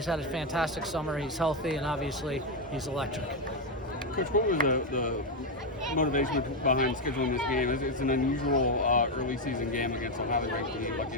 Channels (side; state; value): both; normal; correlation 0.05